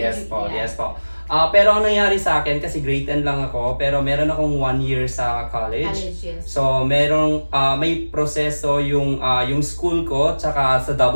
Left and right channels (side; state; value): both; inverted; correlation -1.00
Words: po, Yeah. yes po. Pero ang nangyari sa akin, kasi grade 10 lang ako, pero meron akong 1 year sa college. College, yes. So, may proseso yung school ko, tsaka sa